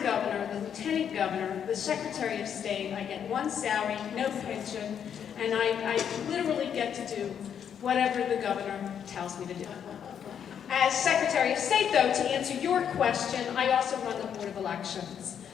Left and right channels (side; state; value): right; quieter; 8.3 dB